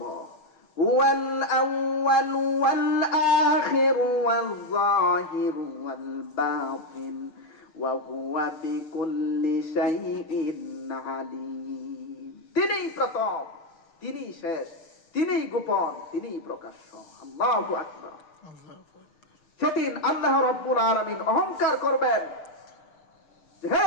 হুয়াল আউয়াল ওয়াল আখির ওয়াল যাহির ওয়াল বাতিন ওয়া হুয়া বিকুল্লি শাইইন আলীম। তিনিই প্রথম, তিনিই শেষ, তিনিই গোপন, তিনিই প্রকাশ্য। আল্লাহু আকবার। সেদিন আল্লাহ রাব্বুল আলামিন অহংকার করবেন, হে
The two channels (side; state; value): right; late; 6.5 ms